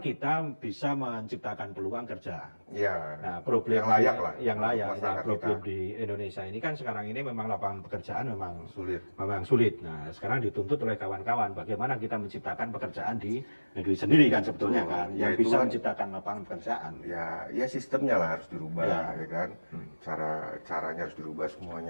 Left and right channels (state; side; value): inverted; both; correlation -1.00